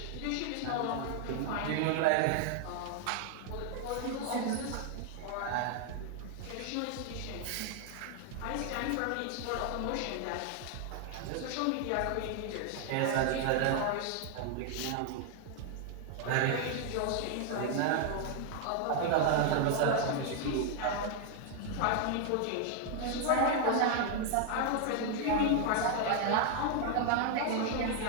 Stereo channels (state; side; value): different; both; correlation 0.00